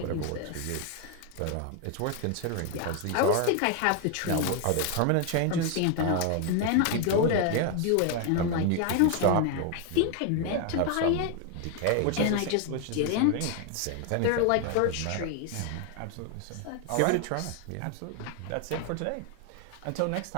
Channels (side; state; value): both; different; correlation 0.01